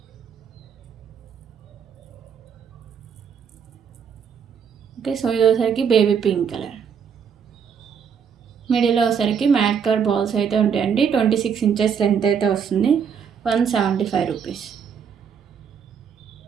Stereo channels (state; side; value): quieter; left; 7.2 dB